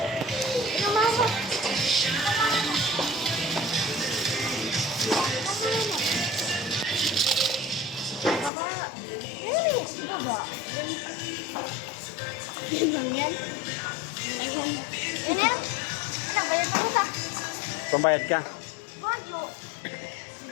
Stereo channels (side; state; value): right; drops out; at 8.5 s